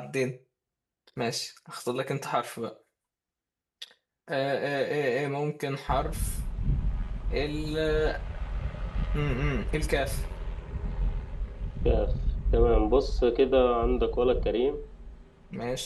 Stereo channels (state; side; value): identical; both; correlation 1.00